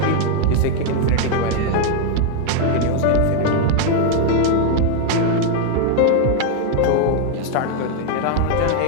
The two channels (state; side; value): different; both; correlation 0.00